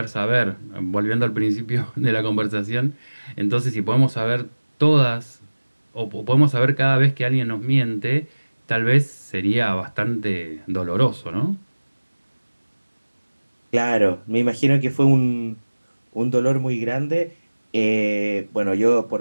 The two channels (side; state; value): both; inverted; correlation -1.00